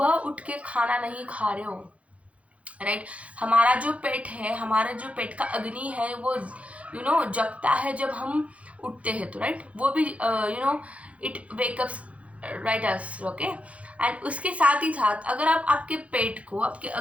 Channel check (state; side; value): late; left; 0.064 ms